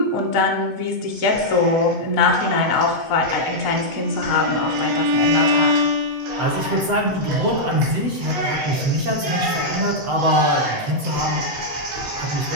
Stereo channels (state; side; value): late; left; 7.8 ms